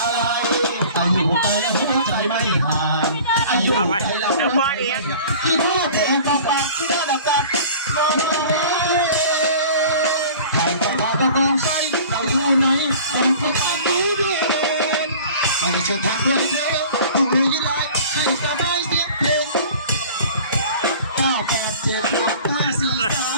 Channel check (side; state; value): both; inverted; correlation -0.44